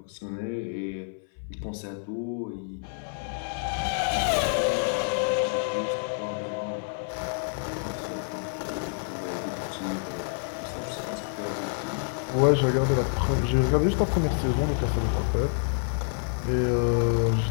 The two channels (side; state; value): right; silent; 60 dB below the other